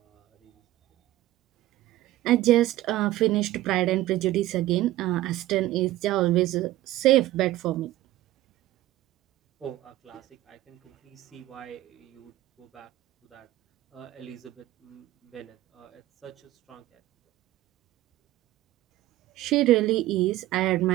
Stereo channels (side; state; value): left; quieter; 15.7 dB